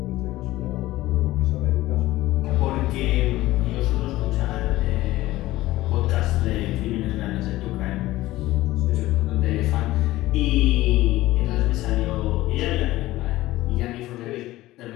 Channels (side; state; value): right; quieter; 16.9 dB